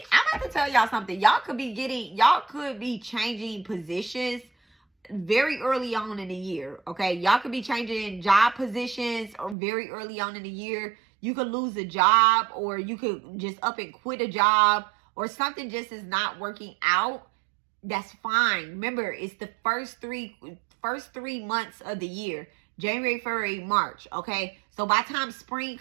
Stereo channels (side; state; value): left; drops out; at 9.6 s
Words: I'm about to tell y'all something. Y'all could be changing positions very early on in the year. Okay, y'all could be changing job positions or very early on in the year. You could lose a job, or you could just up and quit a job, or something just is not working out. That's fine. Remember, it's the first three months of the year. January, February, March. Okay. So by the time